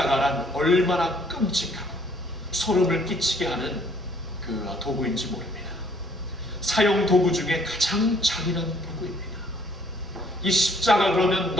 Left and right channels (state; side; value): normal; both; correlation 0.62